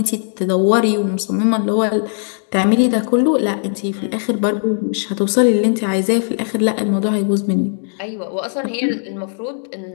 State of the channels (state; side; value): silent; right; digital silence